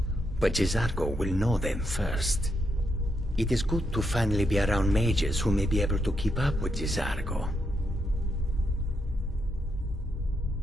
But Jezargo will know them first. It is good to finally be around mages who may be able to keep up with Jezargo.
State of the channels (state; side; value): normal; both; correlation 0.81